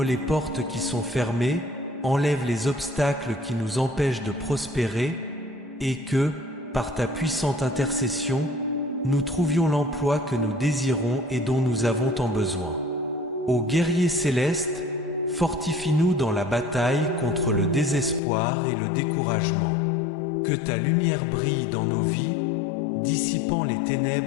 les portes qui sont fermées, enlève les obstacles qui nous empêchent de prospérer, et que, par ta puissante intercession, nous trouvions l'emploi que nous désirons et dont nous avons tant besoin. Ô guerrier céleste, fortifie-nous dans la bataille contre le désespoir et le découragement. Que ta lumière brille dans nos vies, dissipant les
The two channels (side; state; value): right; drops out; at 18.2 s